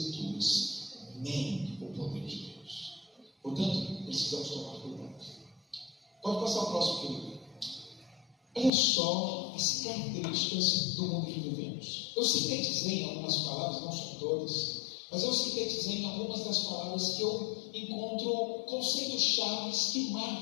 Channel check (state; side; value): drops out; right; at 8.7 s